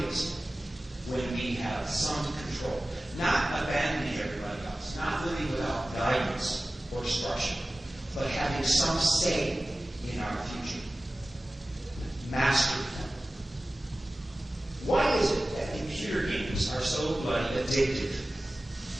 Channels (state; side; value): normal; both; correlation 0.97